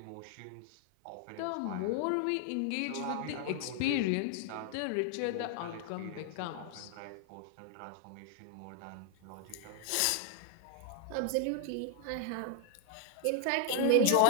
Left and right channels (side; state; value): both; different; correlation 0.00